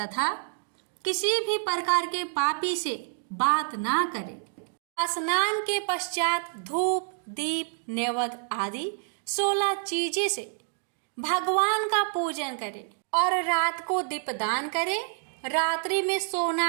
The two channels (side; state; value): left; silent; digital silence